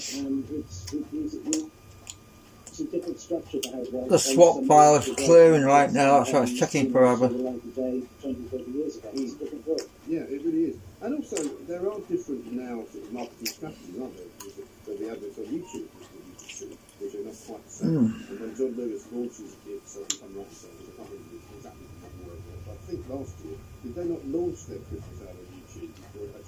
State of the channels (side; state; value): both; identical; correlation 1.00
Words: and it's a different structure to how it works. The swap file is clearing right now, so it's checking forever. Like today, 20, 30 years ago, it's a different world. Yeah, it really is. And also, there are different now sort of marketing strategies, aren't there? So the adverts on YouTube that you can see, which are not quite the same. And when John Lewis launches it, so if I'm right in saying, I can't remember exactly the word, but I think last year, did they not launch their Christmas ad on YouTube before it